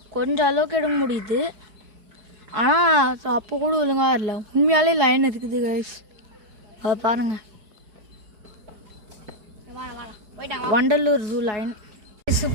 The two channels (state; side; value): late; left; 4.8 ms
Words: கொஞ்சம் அளவுக்கு எடுக்க முடியுது. ஆனால் அப்போ கூட ஒழுங்காக இல்லை. உண்மையாலே லைன் இருக்குது கைஸ், அதை பாருங்கள். Vandalur zoo line.